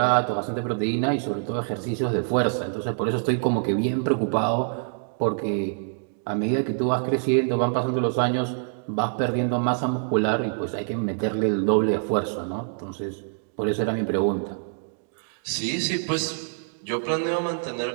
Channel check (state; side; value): silent; left; digital silence